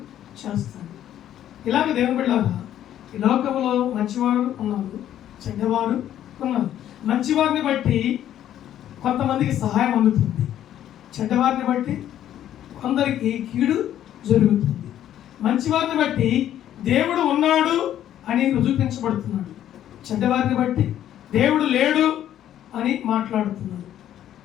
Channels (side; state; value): right; quieter; 11.4 dB